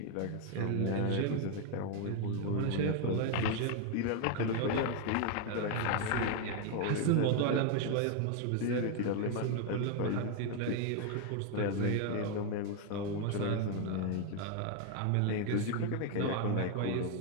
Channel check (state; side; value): different; both; correlation 0.01